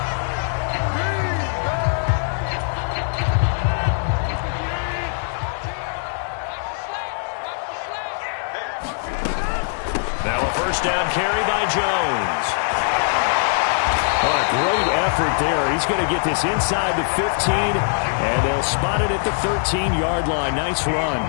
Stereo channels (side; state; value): right; silent; digital silence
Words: Now a first down carry by Jones. What a great effort there. He's going to get this inside the 15, and they'll spot it at the 13-yard line. Nice run.